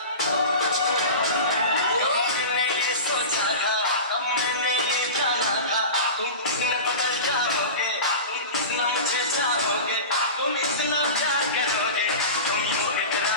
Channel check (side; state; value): both; inverted; correlation -0.30